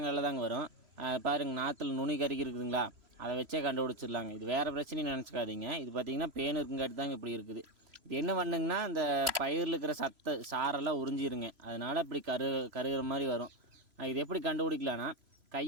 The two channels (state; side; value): late; left; 3.0 ms